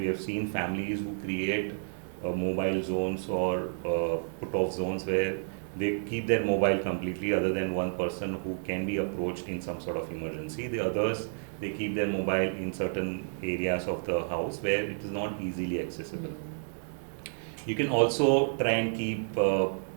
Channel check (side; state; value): left; silent; digital silence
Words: have seen families who create mobile zones or put off zones where they keep their mobile completely, other than one person who can be approached in some sort of emergency. The others, they keep their mobile in certain areas of the house where it is not easily accessible. You can also try and keep